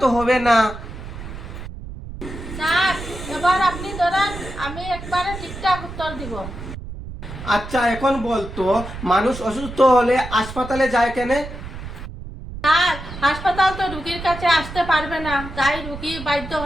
তো হবে না। স্যার এবার আপনি ধরেন, আমি একবারে ঠিকঠাক উত্তর দিব। আচ্ছা এখন বলতো মানুষ অসুস্থ হলে হাসপাতালে যায় কেন? স্যার হাসপাতাল তো রুগীর কাছে আসতে পারবে না, তাই রুগী বাধ্য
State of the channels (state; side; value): noise; right; rumble, 11 dB below the sound